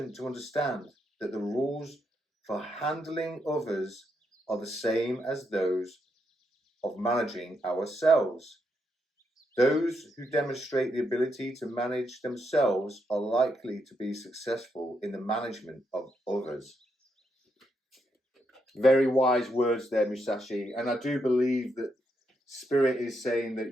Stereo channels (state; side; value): normal; both; correlation 0.80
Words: to understand that the rules for handling others are the same as those of managing ourselves. Those who demonstrate the ability to manage themselves are likely to be successful in the management of others. Very wise words there, Musashi. And I do believe that Spirit is saying